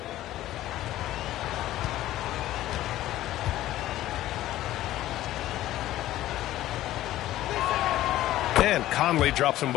And Conley drops them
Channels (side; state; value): right; quieter; 14.5 dB